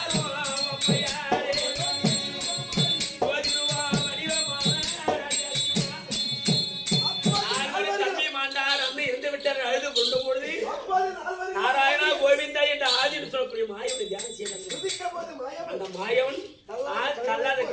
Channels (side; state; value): both; identical; correlation 1.00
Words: நாராயணா கோவிந்தா என்ற ஆதின்னு சொல்லக்கூடிய மாயவனை தியானம் செய்தார். அந்த மாயவன் கல்லாத